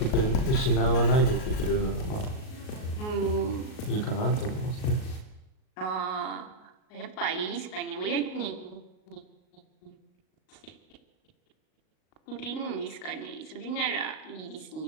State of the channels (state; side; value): late; right; 38 ms